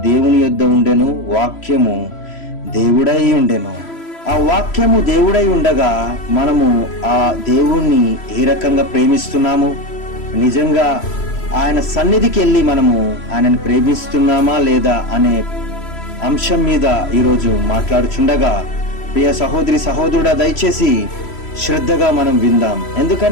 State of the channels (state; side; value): late; right; 3.0 ms